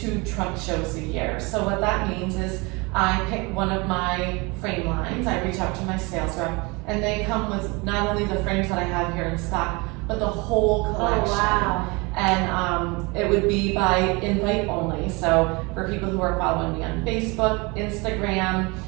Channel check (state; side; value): quieter; left; 27.0 dB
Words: trunk shows a year. So what that means is I pick one of my frame lines, I reach out to my sales rep, and they come with not only the frames that I have here in stock, but the whole collection. Oh, wow. And it would be by invite only. So for people who are following me on Facebook, Instagram,